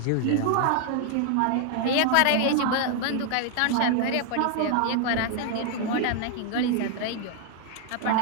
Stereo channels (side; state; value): both; different; correlation 0.00